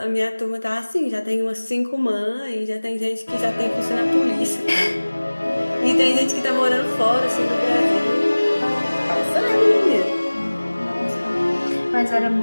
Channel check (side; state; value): both; inverted; correlation -1.00